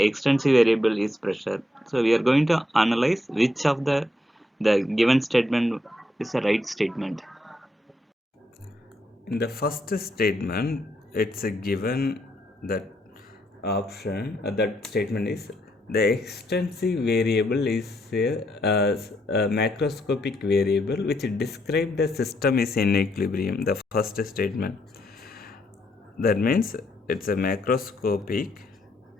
extensive variable is pressure. So we are going to analyze which of the given statement is a right statement. In the first statement, it's a given that option, that statement is the extensive variable is a macroscopic variable which describe the system is in equilibrium. The first statement. That means it's a macroscopic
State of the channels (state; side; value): normal; both; correlation 0.76